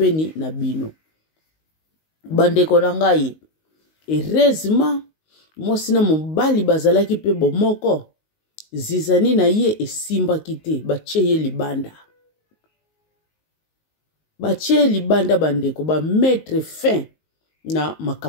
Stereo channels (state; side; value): late; right; 19 ms